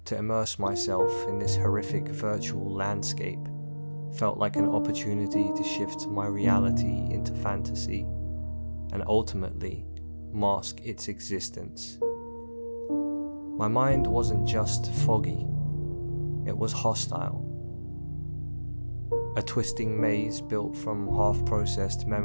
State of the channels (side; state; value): both; inverted; correlation -1.00